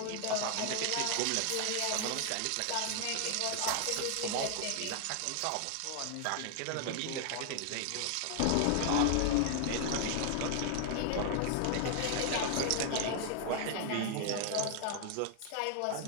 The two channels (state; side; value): different; both; correlation 0.00